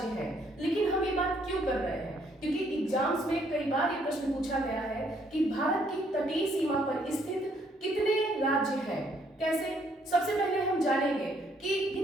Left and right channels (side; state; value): both; normal; correlation 0.68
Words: हैं। लेकिन हम ये बात क्यों कर रहे हैं? क्योंकि एग्जाम्स में कई बार ये प्रश्न पूछा गया है कि भारत की तटीय सीमा पर स्थित कितने राज्य हैं। कैसे? सबसे पहले हम जानेंगे कि